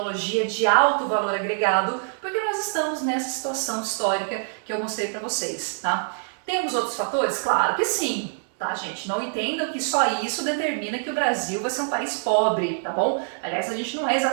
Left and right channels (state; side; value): silent; left; digital silence